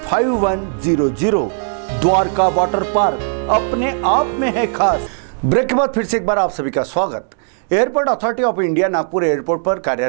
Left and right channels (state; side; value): silent; left; digital silence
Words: Dwarka water park अपने आप में है खास। ब्रेक के बाद फिर से एक बार आप सभी का स्वागत। Airport authority of India Nagpur airport पर